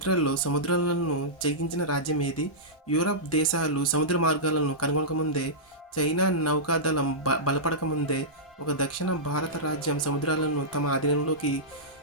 సముద్రాలను జయించిన రాజ్యం ఏది? యూరప్ దేశాలు సముద్ర మార్గాలను కనుగొనకముందే, చైనా నౌకాదళం బలపడకముందే, ఒక దక్షిణ భారత రాజ్యం సముద్రాలను తమ ఆధీనంలోకి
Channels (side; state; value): both; normal; correlation -0.14